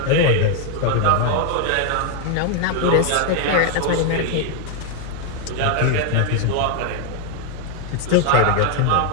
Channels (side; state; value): both; different; correlation 0.01